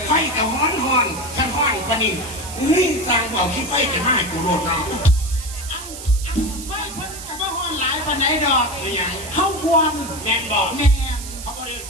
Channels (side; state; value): right; noise; hiss, 11 dB below the sound